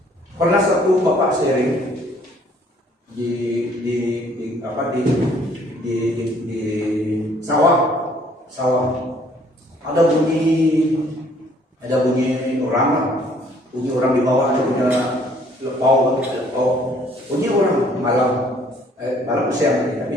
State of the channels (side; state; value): both; normal; correlation 0.61